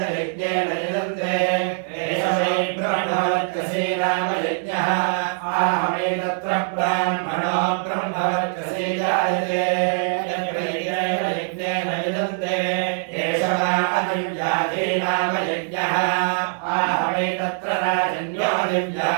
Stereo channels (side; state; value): left; silent; digital silence